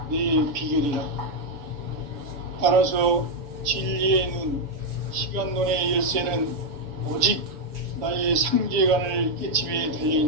내 비결이라. 따라서 진리의 눈, 시간론의 열쇠는 오직 나의 상제관을 깨침에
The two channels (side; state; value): left; late; 7.0 ms